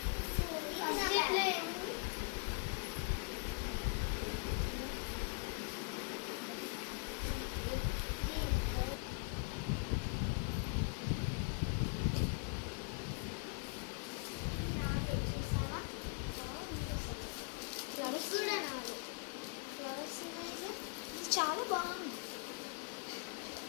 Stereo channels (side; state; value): right; quieter; 31.4 dB